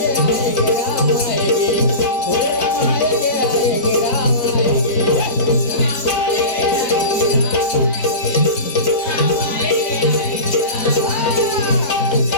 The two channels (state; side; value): late; right; 4.0 ms